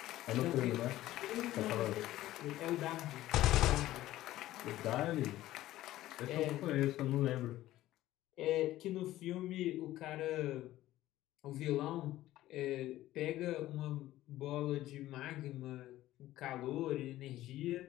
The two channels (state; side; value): quieter; right; 15.1 dB